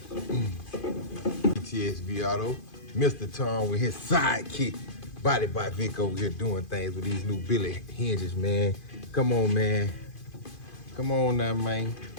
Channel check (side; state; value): right; late; 2.5 ms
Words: VTSV Auto, Mr. Tom with his sidekick, Body by Vic over here doing things with these new Billy hinges, man. Come on, man. Come on now, man.